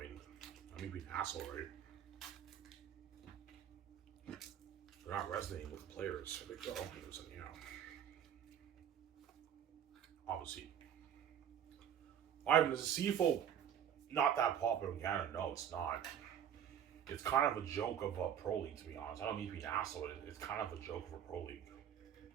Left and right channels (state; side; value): quieter; left; 9.4 dB